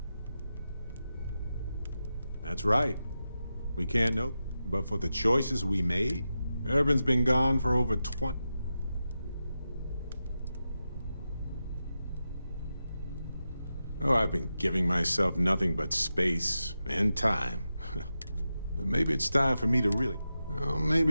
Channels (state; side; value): inverted; both; correlation -0.90